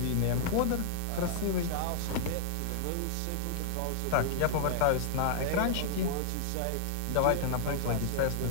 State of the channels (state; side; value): different; both; correlation -0.01